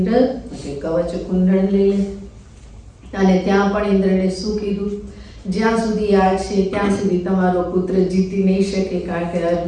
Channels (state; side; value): identical; both; correlation 1.00